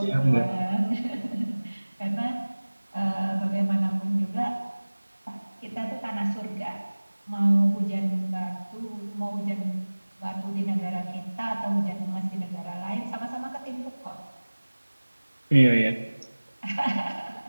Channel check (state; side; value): inverted; both; correlation -1.00